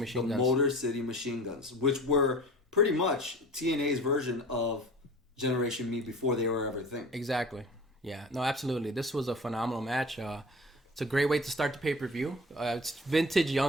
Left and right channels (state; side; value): normal; both; correlation 0.40